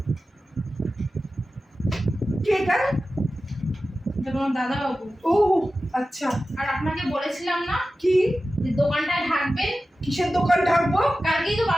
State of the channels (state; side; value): normal; both; correlation 0.94